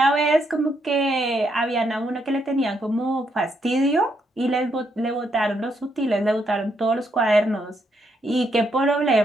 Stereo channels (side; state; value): both; normal; correlation 0.76